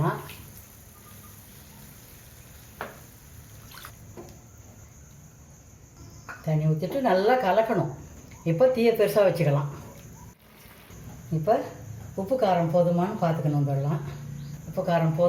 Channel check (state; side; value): identical; both; correlation 1.00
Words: தண்ணி ஊற்றிட்டு நல்லா கலக்கணும். இப்போ தீயை பெருசாக வச்சுக்கலாம். இப்போ உப்பு காரம் போதுமானு பார்த்துக்கணும். இதெல்லாம் உப்பு காரம்